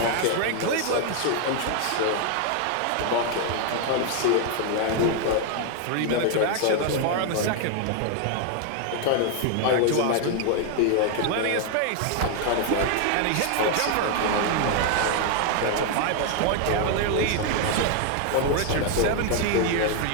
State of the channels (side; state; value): both; different; correlation 0.00